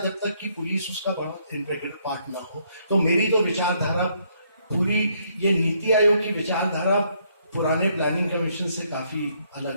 जब तक कि पुलिस उसका बड़ा इंटीग्रल पार्ट ना हो। तो मेरी तो विचारधारा पूरी, ये नीति आयोग की विचारधारा पुराने प्लानिंग कमीशन से काफी अलग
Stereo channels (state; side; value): inverted; both; correlation -0.70